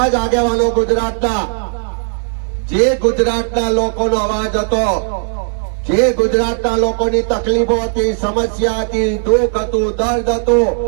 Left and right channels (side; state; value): left; silent; 63 dB below the other